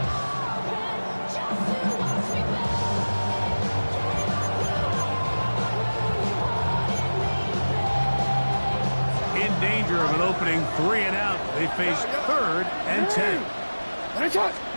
Danger of an opening 3 and out. They face third and 10. The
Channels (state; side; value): inverted; both; correlation -1.00